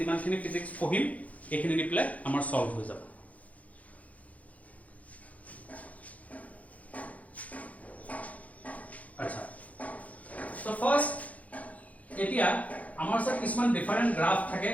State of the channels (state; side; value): late; right; 0.070 ms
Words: ফিজিক্স পঢ়িম এইখিনি দিলে আমাৰ সলভ হৈ যাব আচ্ছা সো ফাৰ্স্ট এতিয়া আমাৰ সব কিছুমান ডিফারেন্ট গ্রাফ থাকে